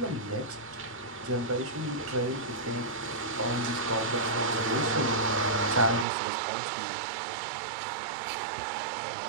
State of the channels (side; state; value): left; drops out; at 6.1 s